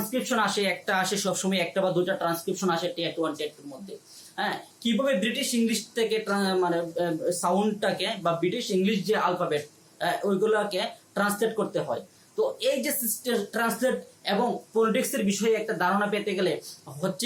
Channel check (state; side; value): identical; both; correlation 1.00